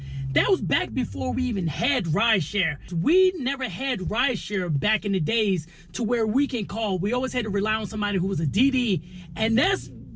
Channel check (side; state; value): both; identical; correlation 1.00